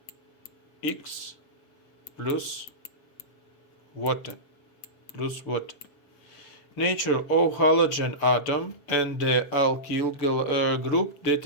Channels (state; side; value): late; right; 7.0 ms